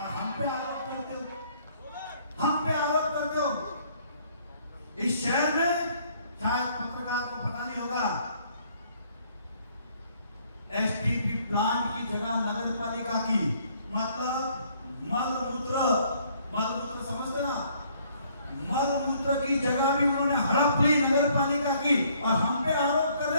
हम पे आरोप करते हो, हम पे आरोप करते हो। इस शहर में शायद पत्रकार को पता नहीं होगा, एसटीपी प्लांट की जगह नगर पालिका की, मतलब मलमूत्र समझते ना, मलमूत्र की जगह भी उन्होंने हड़प ली नगर पालिका की, और हम पे आरोप कर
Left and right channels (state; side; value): inverted; both; correlation -0.64